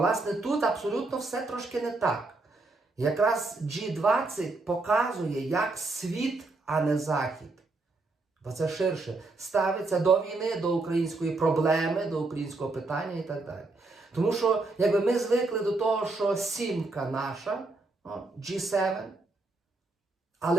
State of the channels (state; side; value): quieter; left; 3.3 dB